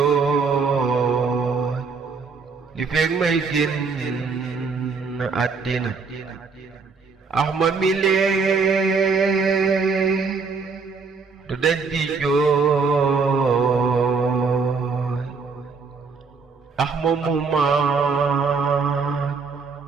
li fekk may génn àddina Ahmad mile du dañ di jooy Ahmad muma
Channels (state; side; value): quieter; left; 4.9 dB